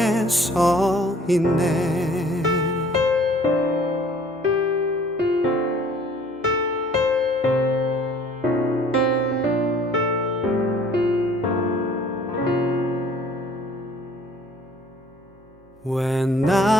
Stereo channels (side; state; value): right; noise; hum, 29 dB below the sound